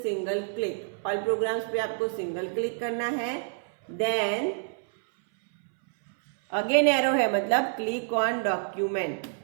single click. All programmes पे आपको सिंगल क्लिक करना है, देन अगेन एरो है मतलब क्लिक ऑन डॉक्यूमेंट।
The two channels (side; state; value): left; silent; 60 dB below the other